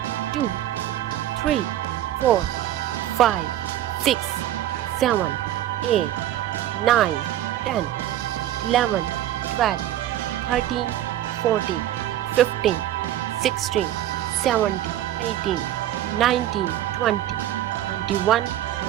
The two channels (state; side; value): quieter; left; 12.7 dB